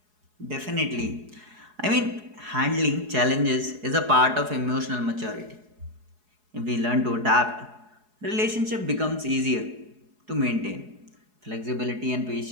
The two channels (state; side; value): late; left; 4.7 ms